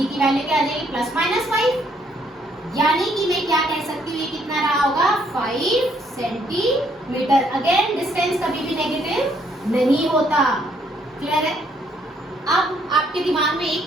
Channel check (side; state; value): both; normal; correlation 0.69